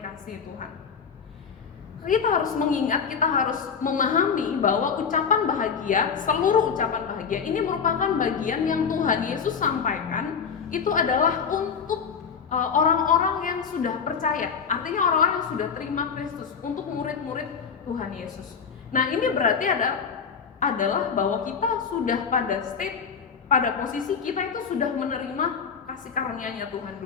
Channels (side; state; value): right; quieter; 6.3 dB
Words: Tuhan. Kita harus mengingat, kita harus memahami bahwa ucapan bahagia, seluruh ucapan bahagia ini merupakan bagian yang Tuhan Yesus sampaikan. Itu adalah untuk orang-orang yang sudah percaya, artinya orang-orang yang sudah terima Kristus, untuk murid-murid Tuhan Yesus. Nah, ini berarti adalah bahwa kita sudah pada posisi kita itu sudah menerima kasih karunia-Nya Tuhan